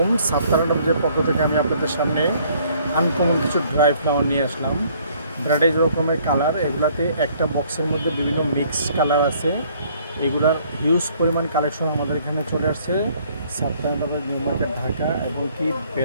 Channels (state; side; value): inverted; both; correlation -0.61